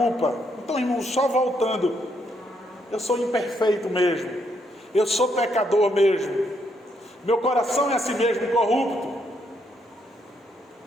Então, irmão, só voltando, eu sou imperfeito mesmo, eu sou pecador mesmo, meu coração é assim mesmo corrupto.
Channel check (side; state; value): both; normal; correlation 0.75